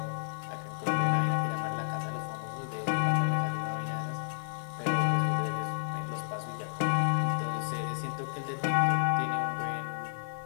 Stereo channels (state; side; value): silent; right; digital silence